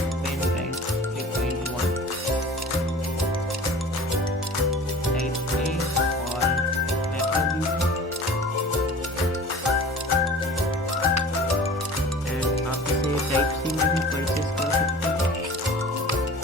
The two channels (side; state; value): both; normal; correlation 0.41